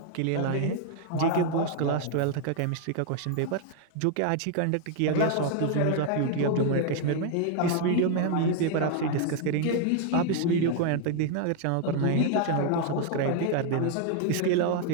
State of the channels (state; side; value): different; both; correlation 0.00